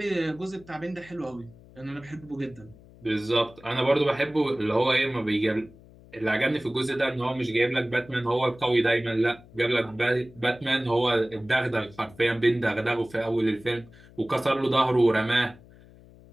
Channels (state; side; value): noise; left; hum, 23 dB below the sound